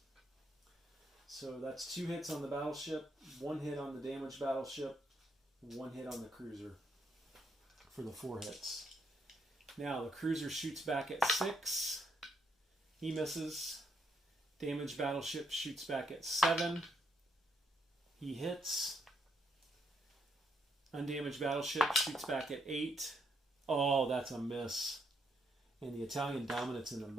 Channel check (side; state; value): both; normal; correlation 0.76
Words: So that's 2 hits on the battleship, 1 hit on the damaged battleship, 1 hit on the cruiser for the 4 hits. Now the cruiser shoots back at 6. He misses. Damaged battleship shoots back at 7. He hits. Undamaged battleship shoots back at 8. Oh, that's a miss. And the Italian dominance in the